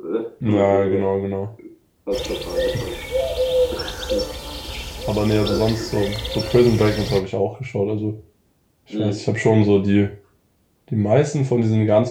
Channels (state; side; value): identical; both; correlation 1.00